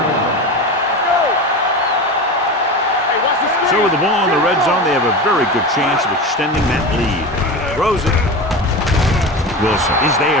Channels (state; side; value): normal; both; correlation 0.27